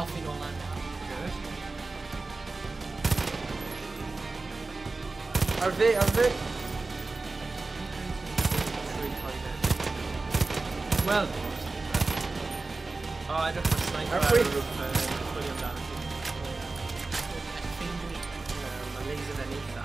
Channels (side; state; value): left; quieter; 3.5 dB